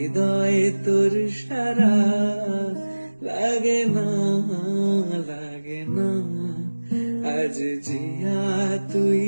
তোর সারা লাগে না আজ জিয়া তুই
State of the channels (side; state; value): both; inverted; correlation -1.00